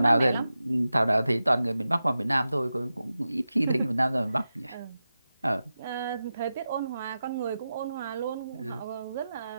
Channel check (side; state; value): both; inverted; correlation -0.92